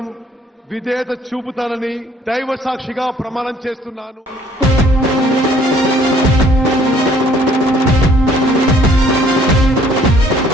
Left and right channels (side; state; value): both; normal; correlation 0.59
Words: విధేయత చూపుతానని దైవ సాక్షిగా ప్రమాణం చేస్తున్నాను.